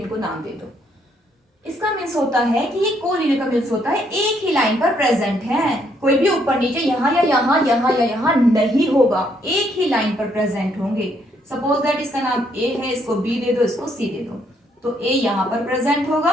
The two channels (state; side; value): normal; both; correlation 0.71